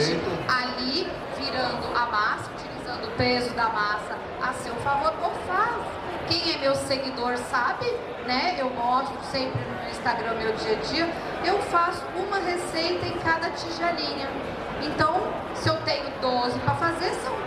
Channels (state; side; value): identical; both; correlation 1.00